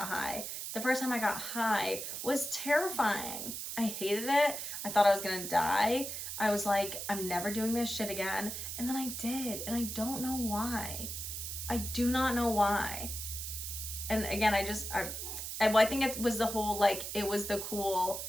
high. The first time I got high was terrifying. I hated it. I thought I was gonna die. I was like, I'm never doing this shit again. And then I did, and I don't know why. I do not know why. And again, I think it was the whole, like, it was the cool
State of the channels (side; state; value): right; noise; hiss, 5 dB below the sound